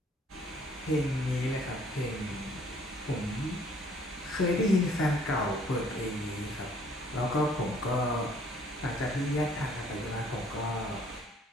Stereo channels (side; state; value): both; normal; correlation 0.60